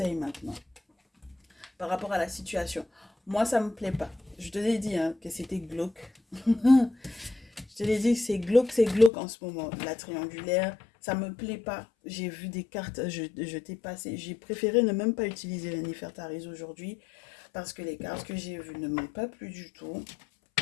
maintenant par rapport à la situation. Moi, ça me plaît pas. Je te l'ai dit hein, que c'était glauque. Je te l'ai dit que c'est glauque en ce moment. La triangulaire, ça me plaît pas. J'ai vu des cartes, je t'ai passé. J'ai préféré ne même pas utiliser les Nefertaris aujourd'hui parce que les cartes que j'ai vues ne m'ont pas plu du tout.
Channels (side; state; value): right; drops out; at 9.1 s